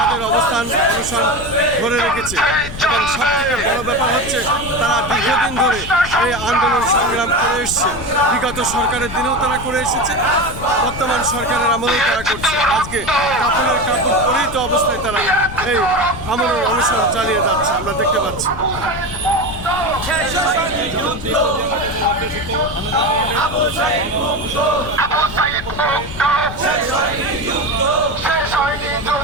অবস্থান অনুষ্ঠান ধরে রেখেছে। এবং সবথেকে বড় ব্যাপার হচ্ছে তারা দীর্ঘদিন ধরে এই আন্দোলন সংগ্রাম করে এসছে। বিগত সরকারের দিনেও তারা করে এসেছে, বর্তমান সরকারের আমলেও তারা করছে। আজকে কাফনের কাপড় পরিহিত অবস্থায় তারা এই আমলের অনুসরণ চালিয়ে যাচ্ছে, আমরা দেখতে পাচ্ছি।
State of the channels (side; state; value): left; noise; rumble, 11 dB below the sound